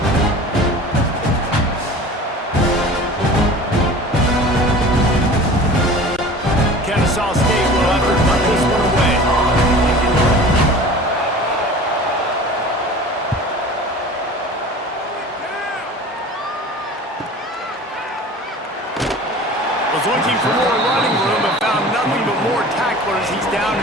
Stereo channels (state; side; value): normal; both; correlation 0.40